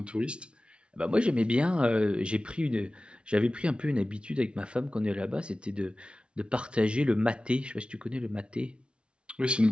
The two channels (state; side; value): late; left; 0.058 ms